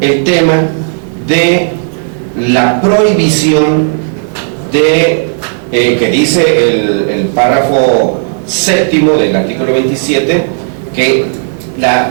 el tema de la prohibición de que dice el párrafo séptimo del artículo 27, que la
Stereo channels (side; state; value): left; silent; digital silence